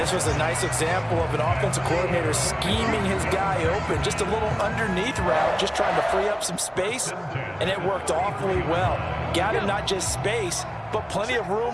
was a nice example of an offensive coordinator scheming his guy open. Just a little underneath route, just trying to free up some space, and it worked awfully well. Got him not just space, but plenty of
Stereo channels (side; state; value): both; identical; correlation 1.00